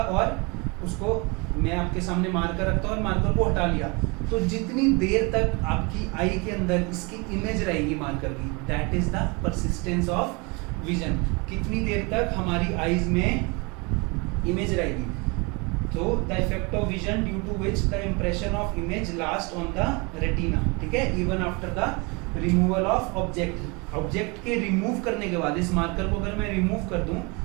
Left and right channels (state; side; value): quieter; left; 28.9 dB